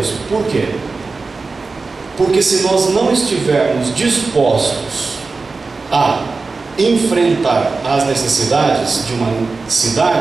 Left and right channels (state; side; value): quieter; left; 4.0 dB